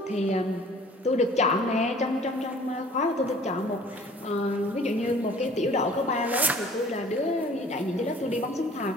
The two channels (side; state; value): both; normal; correlation 0.51